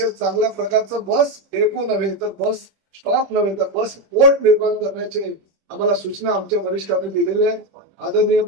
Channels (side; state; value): left; late; 25 ms